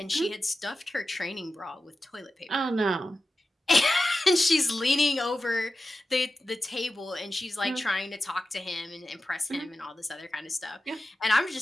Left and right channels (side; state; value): both; normal; correlation 0.93